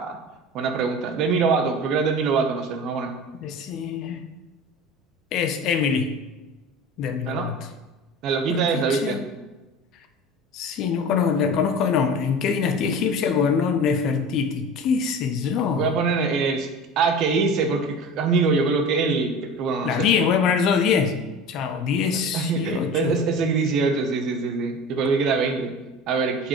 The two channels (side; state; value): both; normal; correlation 0.35